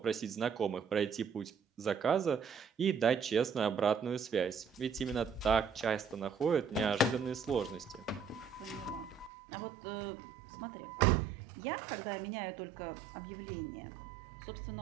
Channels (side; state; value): left; drops out; at 9.3 s